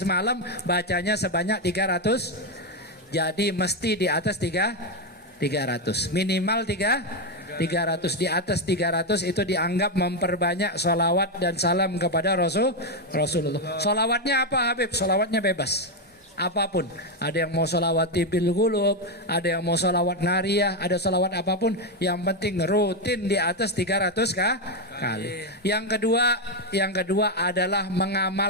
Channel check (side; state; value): both; normal; correlation 0.06